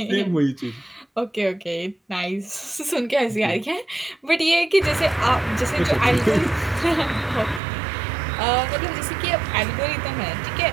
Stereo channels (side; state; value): left; drops out; at 7.6 s